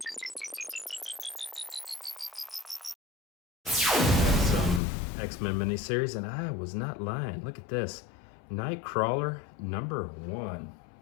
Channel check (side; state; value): right; drops out; at 4.8 s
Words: X-Men miniseries, and I was not lying. Look at this. Nightcrawler number 1.